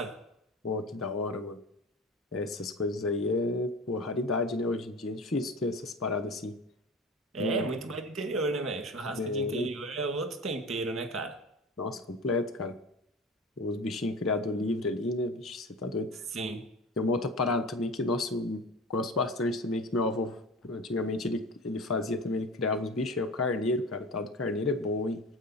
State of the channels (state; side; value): normal; both; correlation 0.33